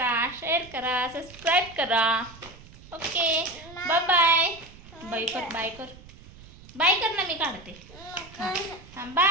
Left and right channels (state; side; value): noise; right; rumble, 20 dB below the sound